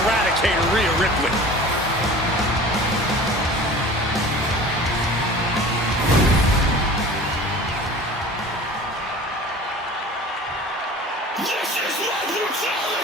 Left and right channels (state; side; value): normal; both; correlation 0.41